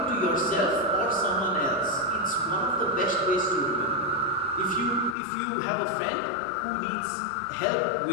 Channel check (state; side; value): drops out; right; at 5.2 s